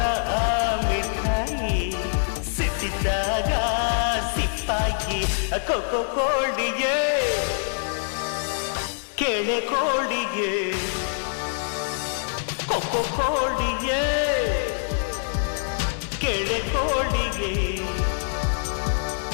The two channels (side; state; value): right; silent; digital silence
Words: ಆ ಮಿಠಾಯಿ ಸಿಟ್ಟಿದ್ದಾಗ ಸಿಪ್ಪಾಗಿ ಕೊಕ್ಕೋ ಕೋಳಿಗೆ ಕೆಳೆ ಕೋಳಿಗೆ ಕೊಕ್ಕೋ ಕೋಳಿಗೆ ಕೆಳೆ ಕೋಳಿಗೆ